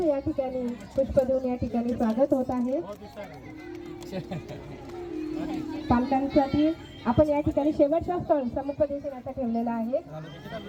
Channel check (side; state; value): both; identical; correlation 1.00